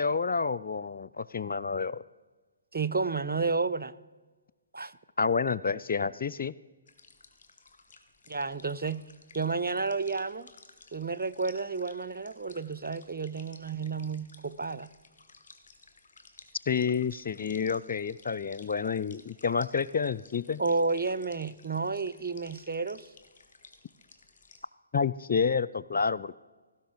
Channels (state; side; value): inverted; both; correlation -0.48